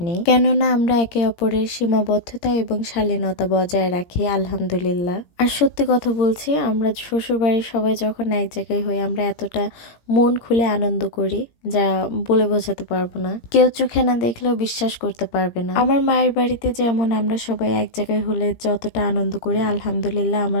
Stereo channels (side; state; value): right; late; 17 ms